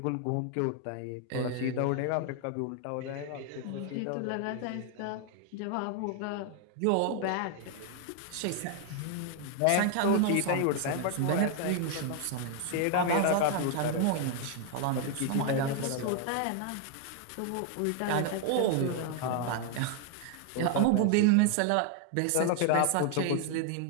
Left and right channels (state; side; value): different; both; correlation 0.00